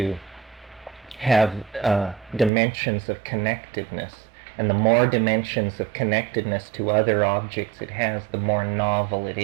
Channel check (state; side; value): drops out; left; at 2.5 s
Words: have dimensions of connectedness. And the more dimensions of connectedness to other objects it has, the more novel it